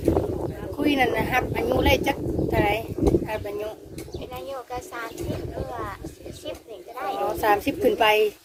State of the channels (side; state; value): both; identical; correlation 1.00